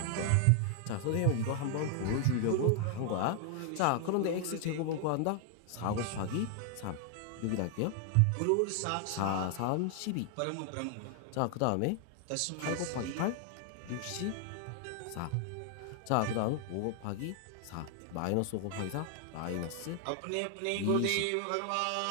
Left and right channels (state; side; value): different; both; correlation 0.00